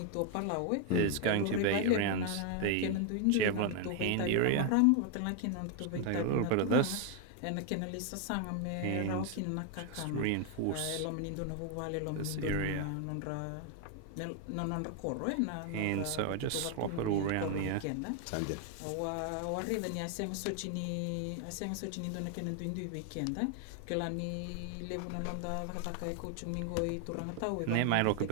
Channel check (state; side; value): different; both; correlation 0.01